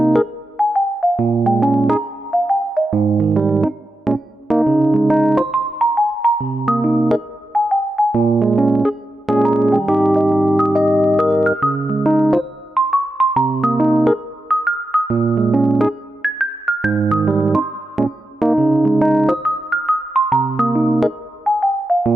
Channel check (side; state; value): both; normal; correlation 0.89